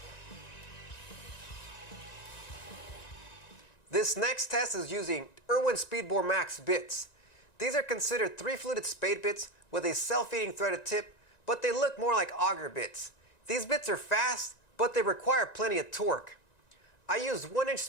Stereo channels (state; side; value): late; right; 1.9 ms